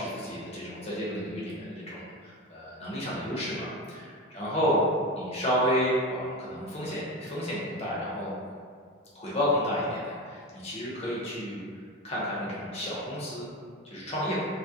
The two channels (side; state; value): both; normal; correlation 0.22